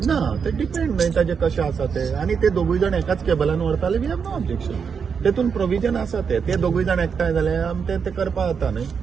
ना ते डिपेंड न्हय ताजे कशें आसा ते आनी ते दोगूय जाण एकाच केबलान व्हरताले वी हॅव नो ऑब्जेक्शन तेतून प्रोविजन आसा ते दोगूय जाण एकठांय जाल्यार आमी ते करपाक जाता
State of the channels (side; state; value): left; quieter; 6.3 dB